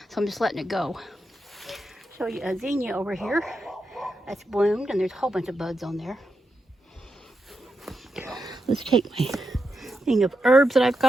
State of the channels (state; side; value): normal; both; correlation 0.86